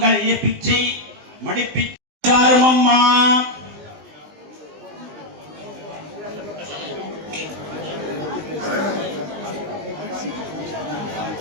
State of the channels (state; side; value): late; left; 20 ms